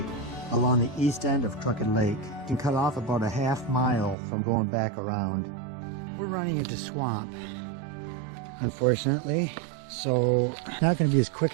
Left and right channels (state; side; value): drops out; left; at 4.2 s